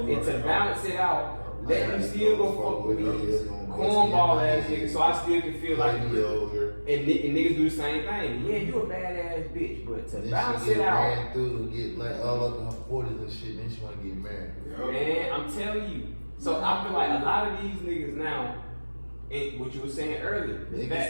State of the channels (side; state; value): both; inverted; correlation -1.00